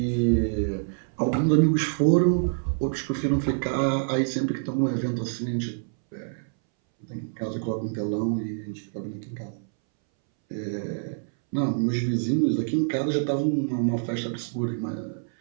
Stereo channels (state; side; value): silent; left; 61 dB below the other